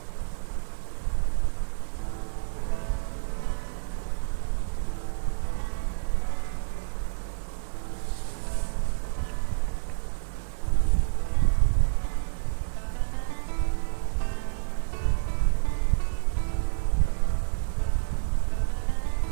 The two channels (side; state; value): left; silent; digital silence